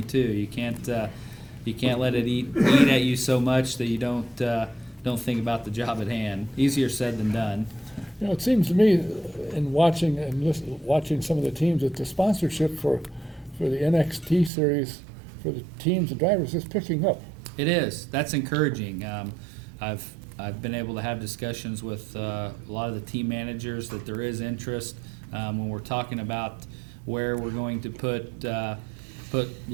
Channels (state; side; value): drops out; left; at 14.5 s